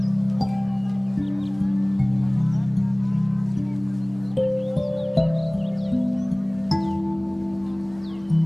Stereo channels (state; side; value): noise; right; hum, 28 dB below the sound